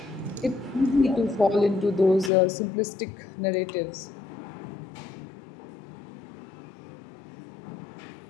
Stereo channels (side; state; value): right; drops out; at 2.3 s